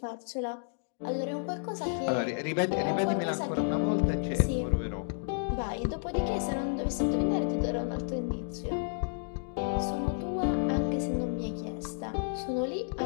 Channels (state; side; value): silent; right; digital silence